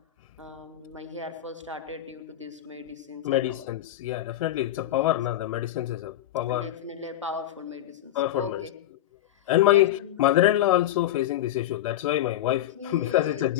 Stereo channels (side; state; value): right; quieter; 13.0 dB